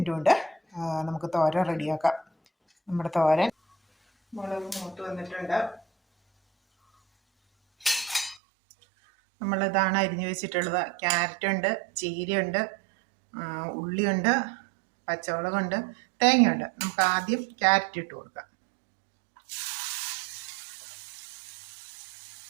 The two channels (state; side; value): drops out; left; at 8.4 s